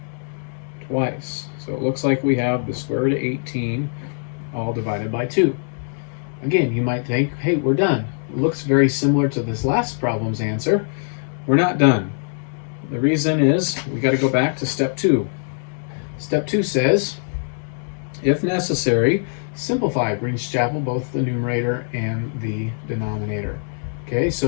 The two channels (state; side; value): silent; right; 64 dB below the other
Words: Twice. So it looks like we have the square root of 18 all divided by 2. Again, you might think, hey, we're done. It looks very similar to this last problem's answer. We're not done. The reason is we got to go back to step 2. Step 2 says, if necessary, simplify. Brings Chapel both the numerator and the denominator. Okay,